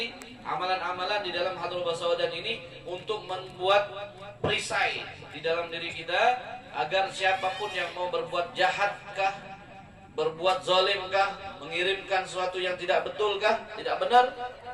amalan-amalan di dalam Hadrah Basawdan ini untuk membuat perisai di dalam diri kita, agar siapapun yang mau berbuat jahatkah, berbuat zalimkah, mengirimkan sesuatu yang tidak betulkah, tidak benar,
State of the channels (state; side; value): identical; both; correlation 1.00